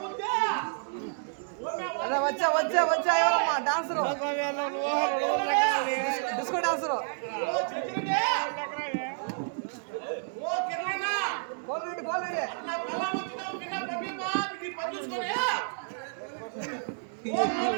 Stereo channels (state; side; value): silent; left; digital silence